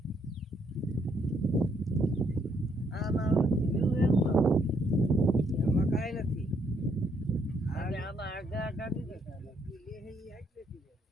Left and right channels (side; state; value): both; normal; correlation 0.72